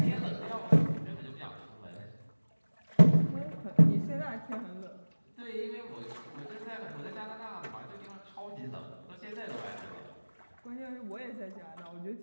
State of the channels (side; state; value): both; inverted; correlation -1.00